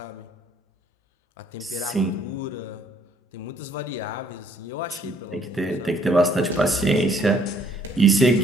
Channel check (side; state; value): both; normal; correlation 0.63